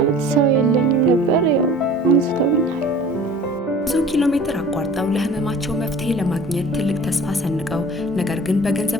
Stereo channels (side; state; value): both; normal; correlation 0.44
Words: ሰው የለኝም ነበር። ያው አንስተውኛል። ብዙ ኪሎ ሜትር አቋርጠው ለህመማቸው መፍትሄ ለማግኘት ትልቅ ተስፋ ሰንቀው ነገር ግን